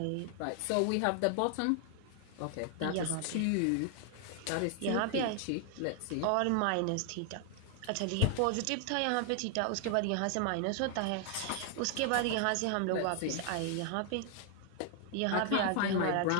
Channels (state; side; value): different; both; correlation 0.00